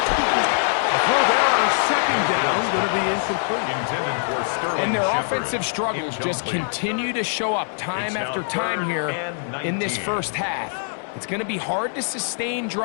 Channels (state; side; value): silent; right; digital silence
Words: A throw there on 2nd down, going to be incomplete. Intended for Sterling And their Shepard. offensive struggles just continue to show up time after time here in this first half. It's going to be hard to sustain